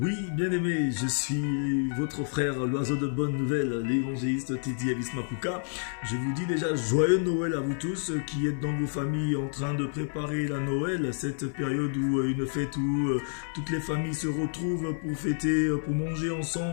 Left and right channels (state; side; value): silent; right; digital silence